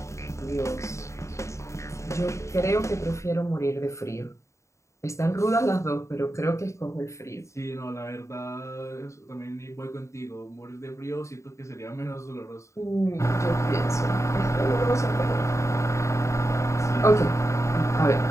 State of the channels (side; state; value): right; late; 0.14 ms